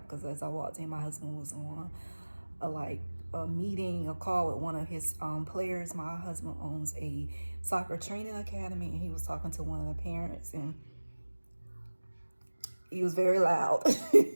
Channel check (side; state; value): both; inverted; correlation -1.00